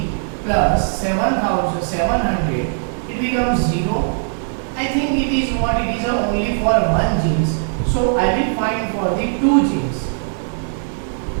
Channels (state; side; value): silent; left; digital silence